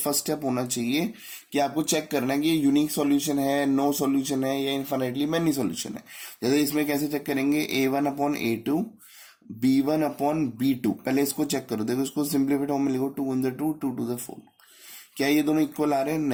स्टेप होना चाहिए कि आपको चेक करना है कि ये यूनिक सॉल्यूशन है, नो सॉल्यूशन है, या इनफाइनाइटली मैनी सॉल्यूशन है। जैसे इसमें कैसे चेक करेंगे, a1 upon a2 b1 upon b2। पहले इसको चेक करो, देखो इसको सिंप्लीफाइड फॉर्म में लिखो 2 × 2 2 × 4। क्या ये दोनों इक्वल आ रहे हैं?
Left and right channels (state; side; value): identical; both; correlation 1.00